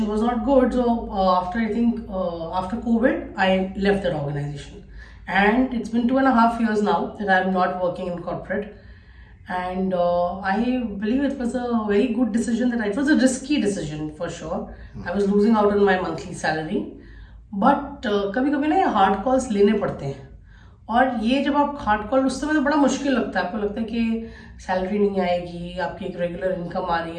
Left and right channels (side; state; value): both; identical; correlation 1.00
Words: was not good. So after COVID, I left that organization, and it's been 2.5 years now that I'm not working in corporate. And I believe it was a very good decision. It was a risky decision for sure. I was losing out on my monthly salary, but कभी-कभी ना ये hard calls लेने पड़ते हैं. और ये जब आप हार्ड कॉल, उस समय तो बड़ा मुश्किल लगता है. आपको लगता है कि सैलरी नहीं आएगी, आपकी एक रेगुलर इनकम आ रही